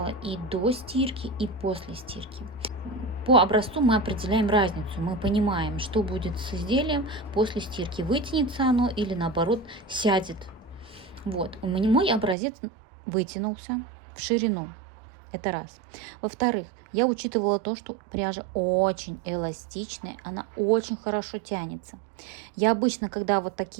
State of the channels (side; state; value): left; drops out; at 12.4 s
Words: и до стирки, и после стирки. По образцу мы определяем разницу. Мы понимаем, что будет с изделием после стирки. Вытянется оно или наоборот сядет. Вот. У меня мой образец вытянулся в ширину. Это раз. Во-вторых, я учитывала то, что пряжа очень эластичная, она очень хорошо тянется. Я обычно, когда вот